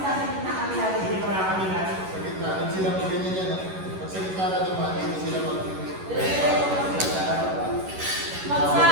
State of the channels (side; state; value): left; late; 11 ms